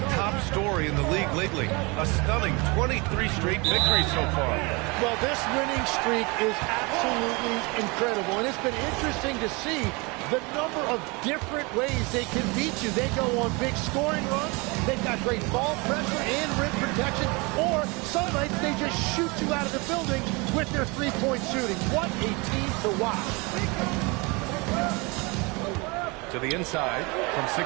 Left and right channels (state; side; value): quieter; left; 27.5 dB